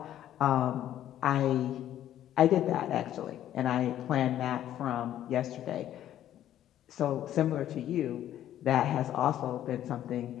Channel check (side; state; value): right; quieter; 11.8 dB